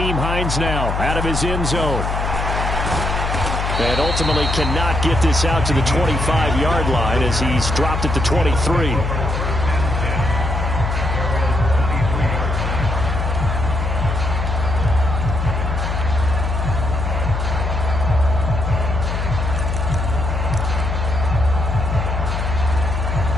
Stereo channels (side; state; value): left; noise; hum, 2 dB below the sound